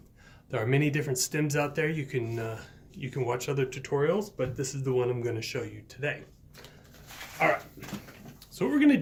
There are many different stems out there. You can watch other tutorials, but this is the one I'm going to show you today. Alright, so what we're going to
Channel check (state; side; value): identical; both; correlation 1.00